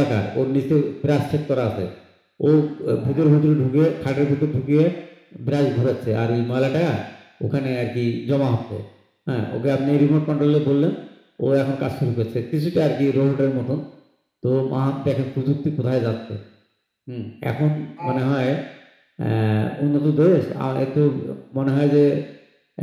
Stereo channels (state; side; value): identical; both; correlation 1.00